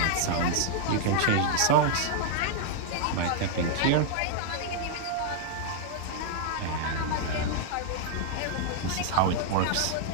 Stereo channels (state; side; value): different; both; correlation -0.01